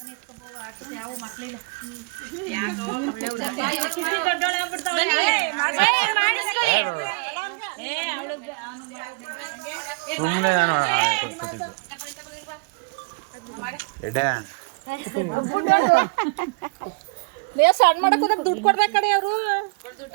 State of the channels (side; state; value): left; quieter; 32.2 dB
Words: ಯಾವ ಮಕ್ಕಳಿಲ್ಲ. ಸಣ್ಣ ಮಾಡಕ್ ದುಡ್ಡು ಕೊಡ್ಬೇಕು ಕಡೆ ಅವರು